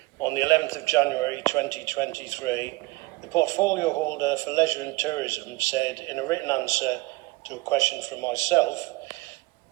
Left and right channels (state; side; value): quieter; left; 22.1 dB